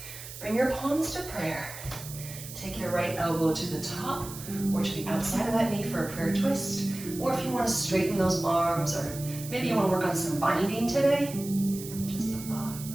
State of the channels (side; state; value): right; noise; hiss, 12 dB below the sound